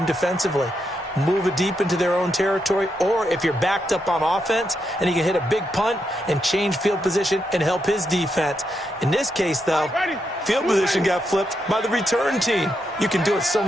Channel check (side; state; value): both; normal; correlation 0.82